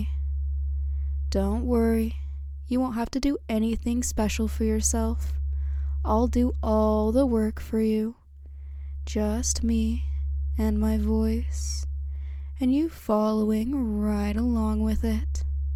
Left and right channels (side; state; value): both; identical; correlation 1.00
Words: Don't worry, you won't have to do anything special for yourself. I'll do all the work for you. Just me and my voice, and you following right along with it.